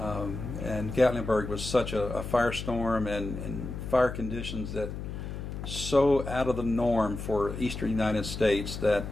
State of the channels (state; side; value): noise; left; hum, 7 dB below the sound